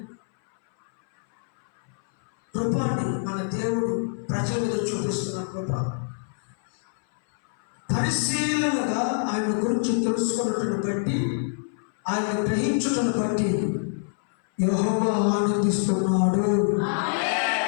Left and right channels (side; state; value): right; silent; 61 dB below the other